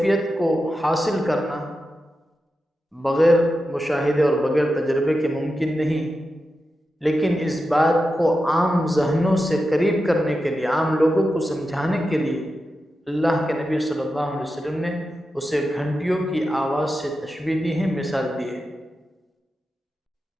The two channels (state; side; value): normal; both; correlation 0.90